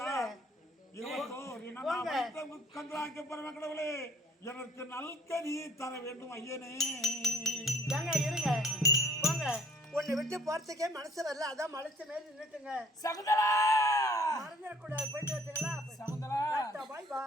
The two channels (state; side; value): normal; both; correlation 0.55